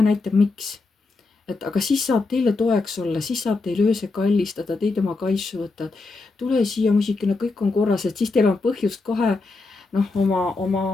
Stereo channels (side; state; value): right; quieter; 3.7 dB